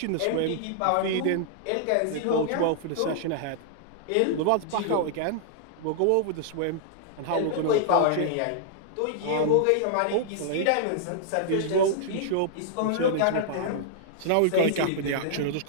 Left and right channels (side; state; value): both; different; correlation -0.01